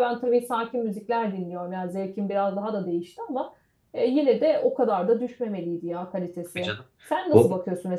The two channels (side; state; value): both; identical; correlation 1.00